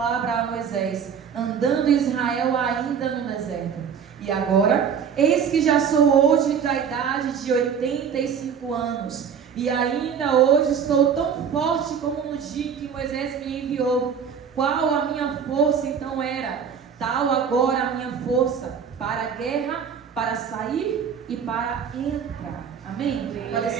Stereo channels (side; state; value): left; quieter; 7.2 dB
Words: a Moisés, andando Israel ainda no deserto. E agora, eis que já sou hoje da idade de 85 anos, e ainda hoje estou tão forte como no dia em que Moisés me enviou. Qual a minha força então era? Tal agora a minha força para a guerra, para sair e para entrar. Amém? Pode